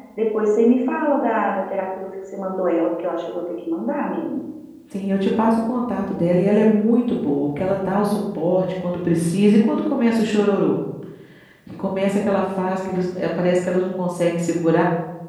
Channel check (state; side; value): identical; both; correlation 1.00